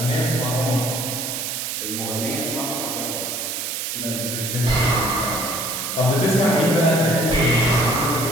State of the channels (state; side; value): noise; right; hiss, 4 dB below the sound